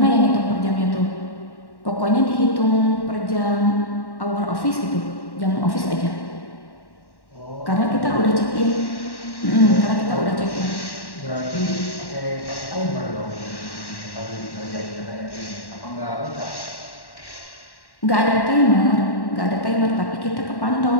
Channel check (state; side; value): late; right; 1.1 ms